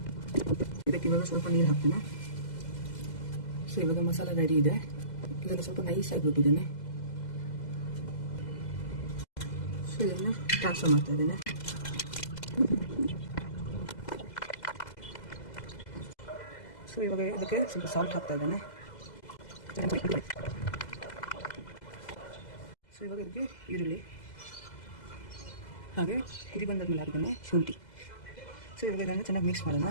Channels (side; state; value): right; late; 2.0 ms